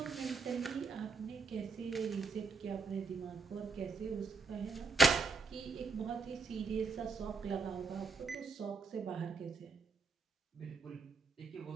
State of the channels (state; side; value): quieter; left; 4.3 dB